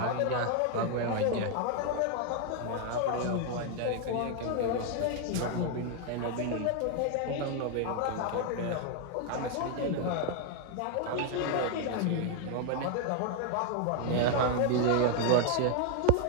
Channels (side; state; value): both; different; correlation 0.01